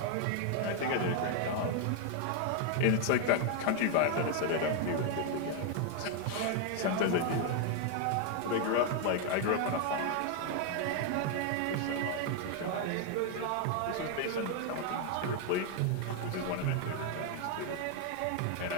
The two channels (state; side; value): different; both; correlation 0.00